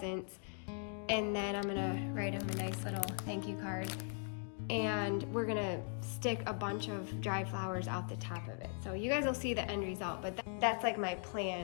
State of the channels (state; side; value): silent; right; 51 dB below the other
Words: and then I'm gonna write them a nice little thank you card, and we're gonna stick a bunch of dried flowers out the top of it. So you guys will see the end result, but that's like my